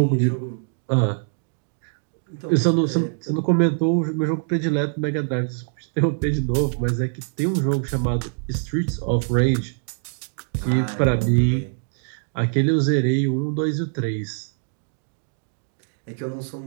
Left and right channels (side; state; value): left; silent; 63 dB below the other